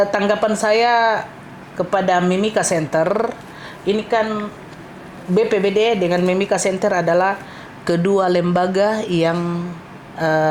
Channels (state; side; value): identical; both; correlation 1.00